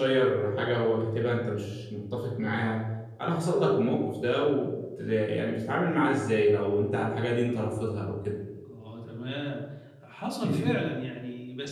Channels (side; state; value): both; identical; correlation 1.00